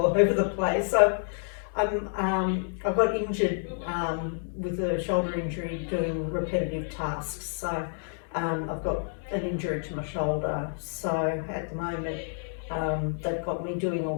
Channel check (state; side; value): silent; right; 59 dB below the other